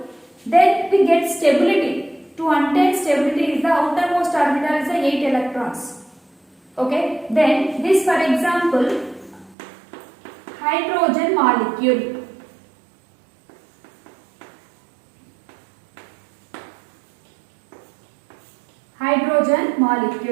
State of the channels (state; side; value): drops out; left; at 9.6 s